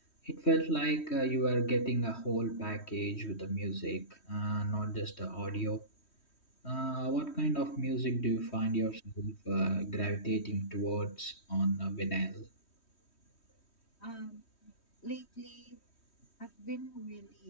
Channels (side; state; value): right; late; 3.1 ms